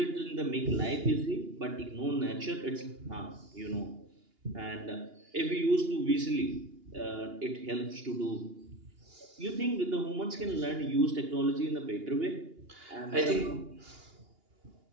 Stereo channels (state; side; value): late; left; 2.8 ms